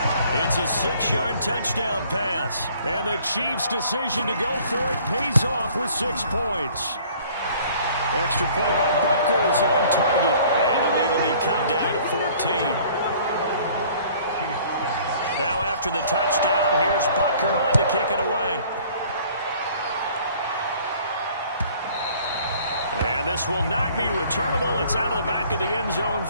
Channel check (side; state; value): both; inverted; correlation -0.54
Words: It's a 6-yard touchdown pass. And the Chiefs' decision to go for it pays off with 6 points. Extra point by Butker is on target. And the lead will be cut down to 14. Now after the touchdown, here's Butker on to kick it away. And this will not be returnable. It's out of the back of the end zone